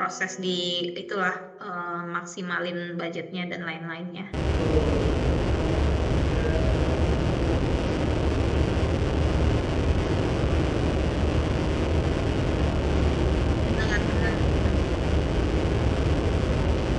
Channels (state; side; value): identical; both; correlation 1.00